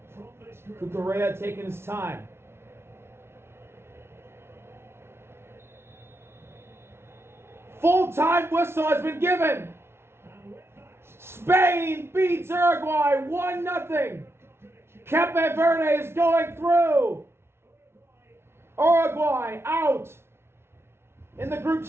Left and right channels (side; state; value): left; late; 0.12 ms